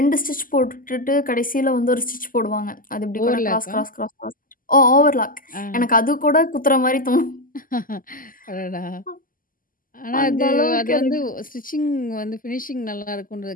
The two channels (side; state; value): right; late; 0.41 ms